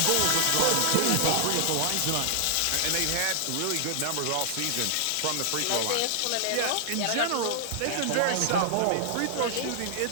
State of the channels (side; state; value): both; different; correlation -0.01